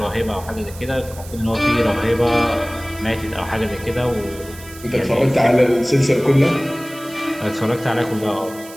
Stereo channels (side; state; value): right; noise; hiss, 18 dB below the sound